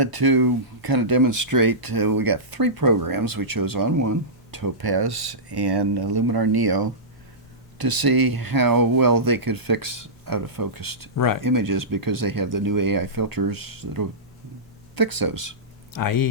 to kind of demonstrate. We got three programs. We chose On1, Topaz, and Luminar Neo to see how well they could fix out-of-focused Right. images because they have the new AI filters that'll fix those.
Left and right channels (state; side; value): normal; both; correlation -0.17